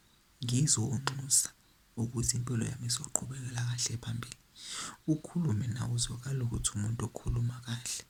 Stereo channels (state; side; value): identical; both; correlation 1.00